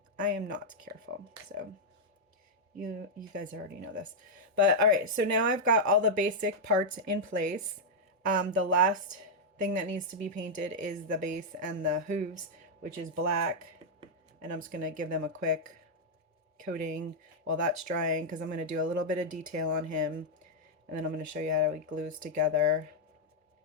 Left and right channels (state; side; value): normal; both; correlation -0.04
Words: I am not careful. So you guys already know this. But all right, so now I've got all the basic parts in place. The last thing that needs to be painted is the base and the hooves, which is black. And I'm just going to give them a quick coating while that's drying, because I'm going to do a little bit of detail on him, and then I'm going to show you how he glues together.